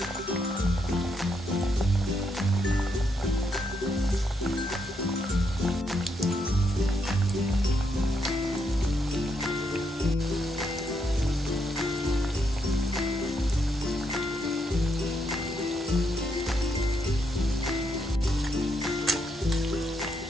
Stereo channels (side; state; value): both; normal; correlation 0.78